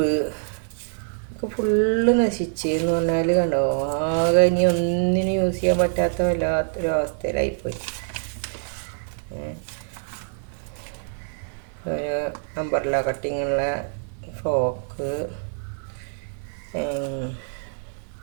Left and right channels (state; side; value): silent; left; 55 dB below the other